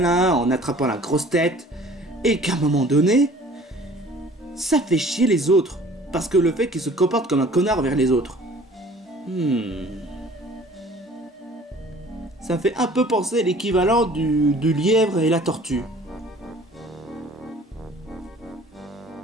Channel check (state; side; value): normal; both; correlation 0.50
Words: en attrapant la grosse tête, et qu'à un moment donné, ça fait chier les autres, parce que le fait qu'il se comporte comme un connard vers les autres. Ça fait un peu penser à l'équivalent du lièvre et la tortue.